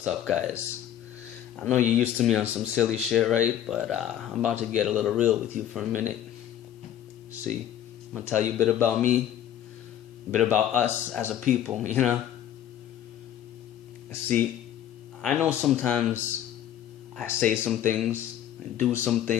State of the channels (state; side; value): quieter; right; 10.8 dB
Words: up, guys? I know you're used to me on some silly shit, right? But I'm about to get a little real with you for a minute. See, I'm gonna tell you a bit about me, a bit about us as a people, See, I know sometimes I say some things and do some